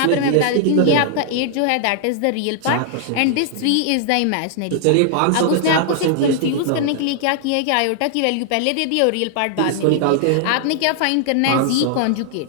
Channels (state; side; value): different; both; correlation 0.00